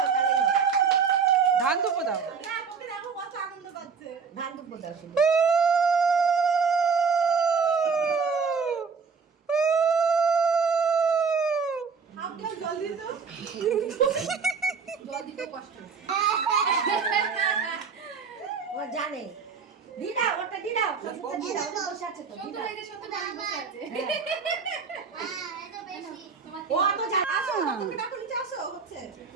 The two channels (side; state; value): left; quieter; 5.6 dB